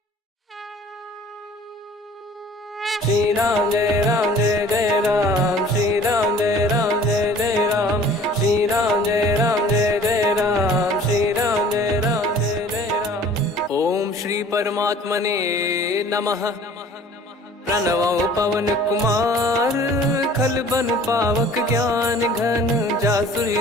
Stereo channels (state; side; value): normal; both; correlation 0.49